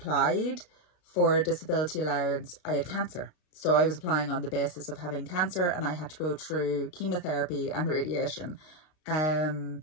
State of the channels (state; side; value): late; right; 32 ms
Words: for disability allowance, I had cancer. So I was applying on the basis of having cancer and I had to go through chemotherapy and radiation.